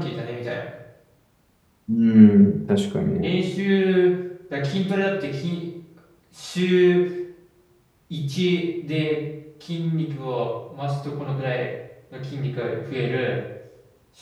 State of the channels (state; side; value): identical; both; correlation 1.00